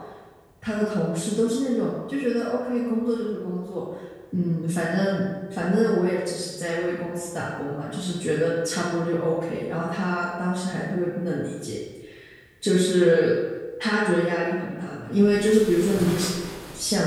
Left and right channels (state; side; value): identical; both; correlation 1.00